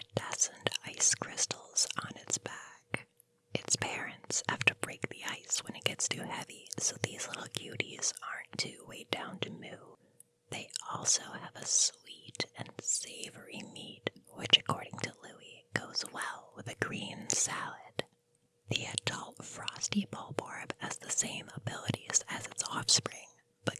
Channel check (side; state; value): both; identical; correlation 1.00